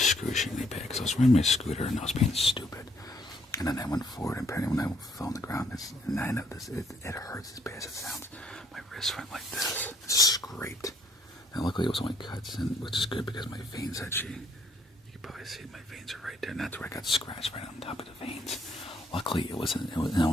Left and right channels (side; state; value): both; normal; correlation 0.68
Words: bad. Because I was riding my scooter and I was being stupid, and then I went forward, and apparently when I fell on the ground, I know this. It hurts as bad as it sounds. My wrist went like this, scraped. And luckily it was only cuts, which is good because my veins actually, you can probably see my veins are right there, and that's where I got scratched right on top of the veins. Luckily it